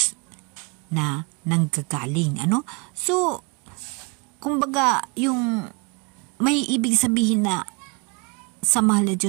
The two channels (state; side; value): quieter; left; 30.4 dB